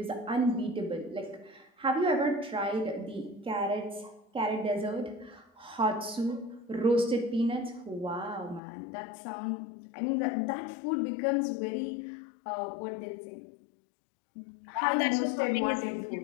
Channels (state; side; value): drops out; right; at 8.6 s